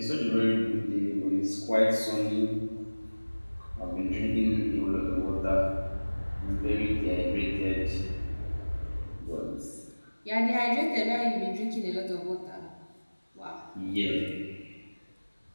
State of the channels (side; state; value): both; inverted; correlation -1.00